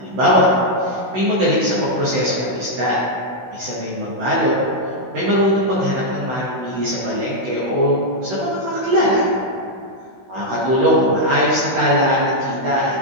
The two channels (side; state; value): left; late; 16 ms